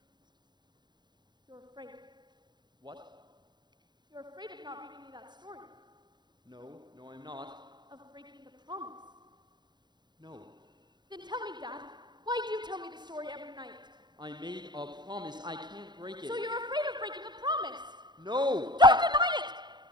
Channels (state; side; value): late; left; 0.21 ms